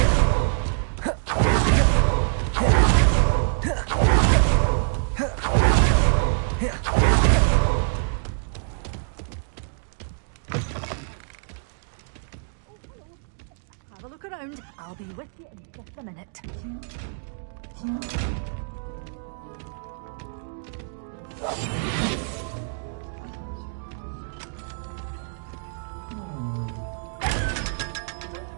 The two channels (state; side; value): silent; left; digital silence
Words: Have a look around. I'll be with you in just a minute.